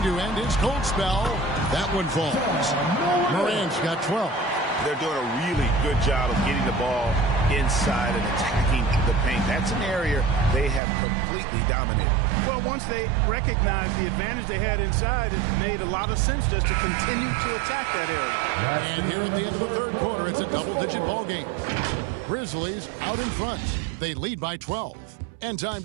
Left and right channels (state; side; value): drops out; left; at 10.8 s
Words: to end his cold spell. That one falls. Morant's got 12. They're doing a really good job of getting the ball inside and attacking the paint. That's an area they have completely dominated. Well, once they recognized the advantage they had inside, it made a lot of sense just to continue to attack that area. And here at the end of the third quarter, it's a double-digit ball game. Grizzlies out in front. They lead by 12. And time